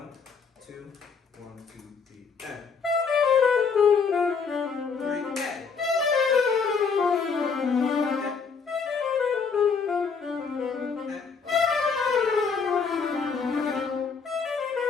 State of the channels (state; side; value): quieter; right; 5.5 dB